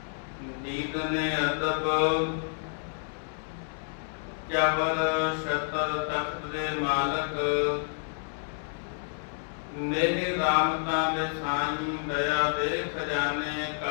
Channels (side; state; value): right; silent; digital silence